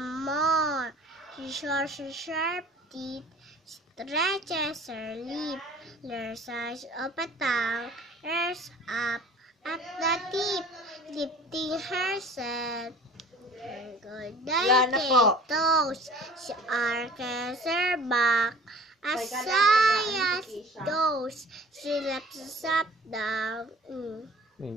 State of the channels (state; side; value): normal; both; correlation 0.47